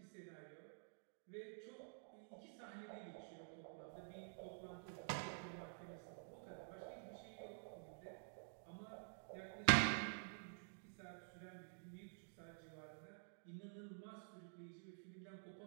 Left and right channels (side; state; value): left; silent; digital silence